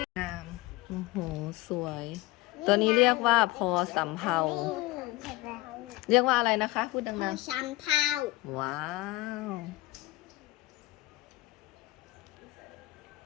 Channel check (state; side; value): quieter; right; 19.4 dB